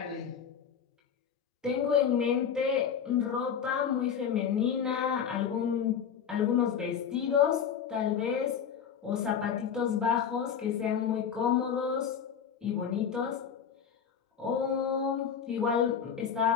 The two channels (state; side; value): quieter; right; 7.7 dB